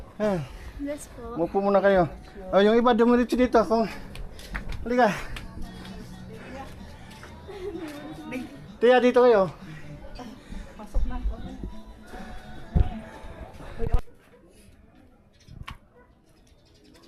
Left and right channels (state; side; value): identical; both; correlation 1.00